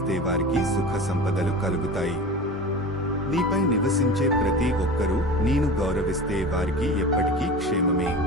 వారికి సుఖ సంపదలు కలుగుతాయి. నీపై నివసించే ప్రతి ఒక్కరూ నేను గౌరవిస్తే వారికి ఎప్పటికీ క్షేమమే.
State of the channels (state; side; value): normal; both; correlation 0.33